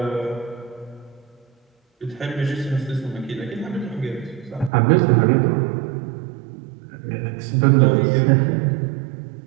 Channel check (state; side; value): drops out; left; at 4.7 s